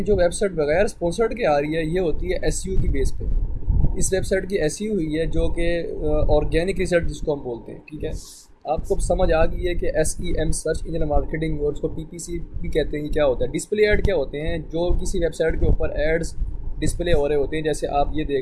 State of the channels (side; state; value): both; identical; correlation 1.00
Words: जो वेबसाइट बगैर स्पॉन्सर्ड के आ रही है, ये होती है SEO की बेस पे। इस वेबसाइट की SEO हुई है जो कि ऑर्गेनिक रिसर्च जिसको हम बोलते हैं, ठीक है। आपको समझ आ गई है कि SEM सर्च इंजन मार्केटिंग, और उसको PPC भी कहते हैं, क्या होता है। डिस्प्ले ऐड क्या होते हैं, जो किसी वेबसाइट के ऊपर एड्स डिस्प्ले हो रहे होते हैं, जैसे आप ये